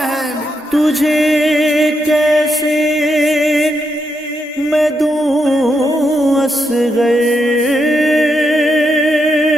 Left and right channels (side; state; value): both; normal; correlation 0.82